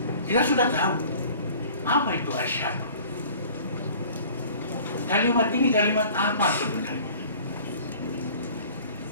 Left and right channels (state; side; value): inverted; both; correlation -0.48